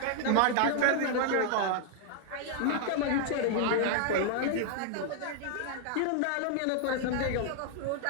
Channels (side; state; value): both; different; correlation 0.00